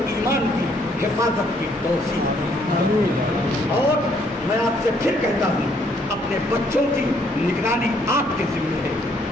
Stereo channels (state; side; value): normal; both; correlation 0.68